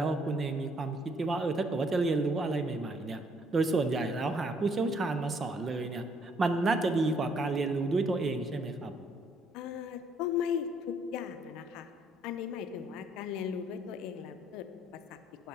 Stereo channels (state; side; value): normal; both; correlation 0.67